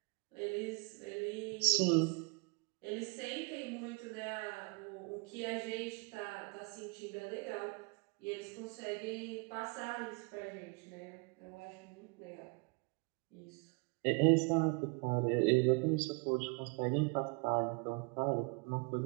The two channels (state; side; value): quieter; left; 33.0 dB